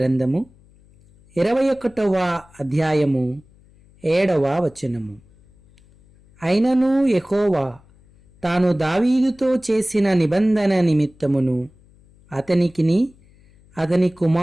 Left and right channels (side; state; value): left; noise; hum, 29 dB below the sound